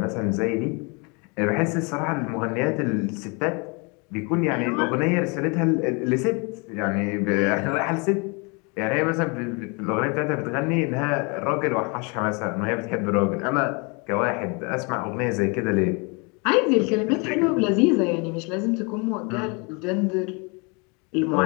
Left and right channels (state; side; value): quieter; right; 31.4 dB